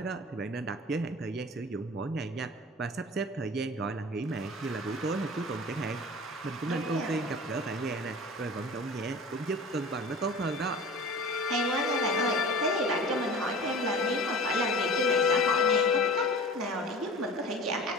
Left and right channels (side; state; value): both; normal; correlation 0.39